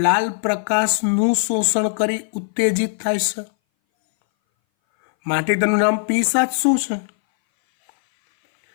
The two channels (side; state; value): right; silent; 61 dB below the other